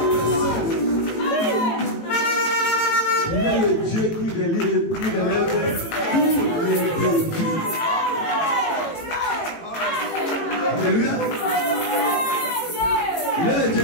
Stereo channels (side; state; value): right; late; 18 ms